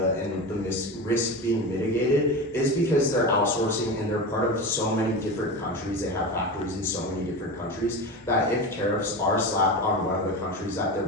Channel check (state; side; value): normal; both; correlation 0.25